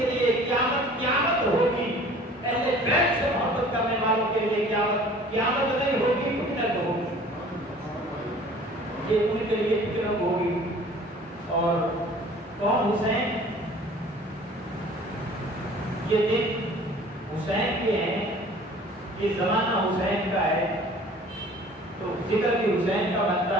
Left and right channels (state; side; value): normal; both; correlation 0.48